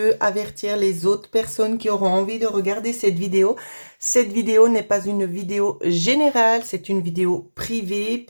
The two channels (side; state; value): both; inverted; correlation -1.00